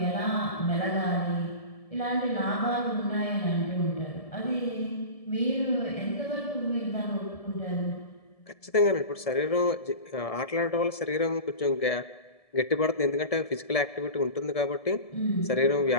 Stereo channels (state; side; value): late; right; 1.7 ms